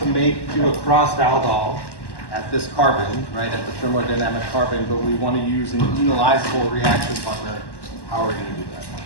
do a crossed aldol at this carbon, right, at the thermodynamic carbon, but we want to use an enolizable reaction partner. How are we going to do that?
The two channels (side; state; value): right; late; 1.1 ms